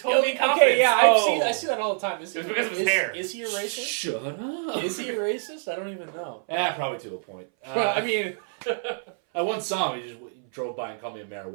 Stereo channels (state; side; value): silent; left; 59 dB below the other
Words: me in Okay, confidence. yeah, Oh. I see that all the time. Is It was he- because of his is- hair. Is he a racist? Shut up. Is he a racist? I don't even know. Yeah, probably to a point. Well, I mean, I once saw him. He just drove by and called me a